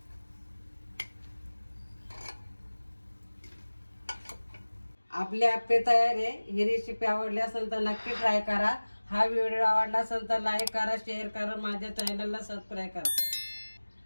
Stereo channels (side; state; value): both; inverted; correlation -1.00